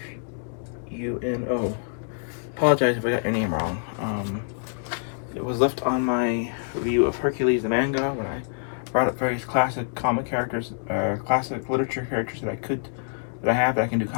Apologize if I got your name wrong. It was left on my review of Hercules the manga when I brought up various classic comic characters, classic literature characters that I have that I can do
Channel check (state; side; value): silent; right; digital silence